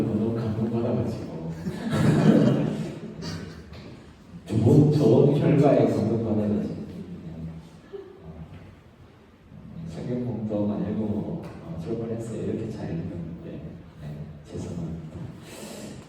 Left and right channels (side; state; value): both; identical; correlation 1.00